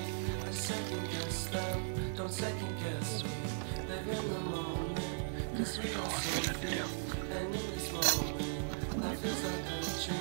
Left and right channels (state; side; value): silent; left; 53 dB below the other